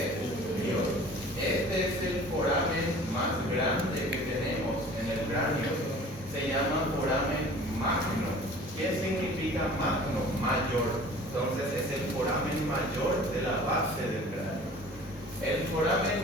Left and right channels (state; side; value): normal; both; correlation 0.46